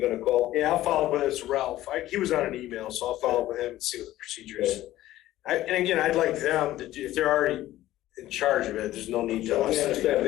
gonna call? Yeah, I'll follow up with this Ralph. He was on an email, so I'll follow up with him and see what the procedure is. And again, I'd like them to do, if they're already in charge of it, there's no need to. So I understand,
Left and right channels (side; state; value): right; quieter; 14.9 dB